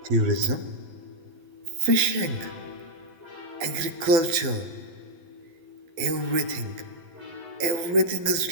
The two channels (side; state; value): left; late; 11 ms